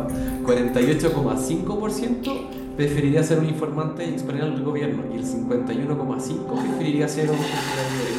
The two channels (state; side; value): identical; both; correlation 1.00